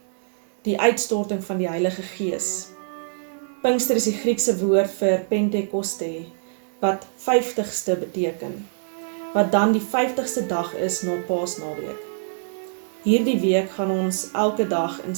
die uitstorting van die Heilige Gees. Pinkster is die Griekse woord vir Pentekoste, wat 50ste beteken, wat dan die 50ste dag is na Paasnaweek. Hierdie week gaan ons elke dag in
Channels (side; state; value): left; silent; digital silence